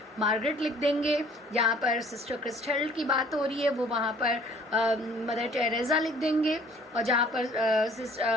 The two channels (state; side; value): normal; both; correlation 0.55